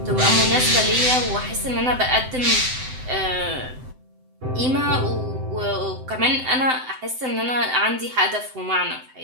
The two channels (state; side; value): late; left; 7.8 ms